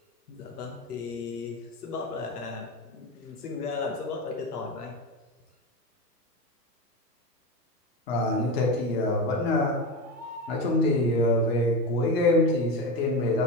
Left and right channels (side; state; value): both; normal; correlation 0.21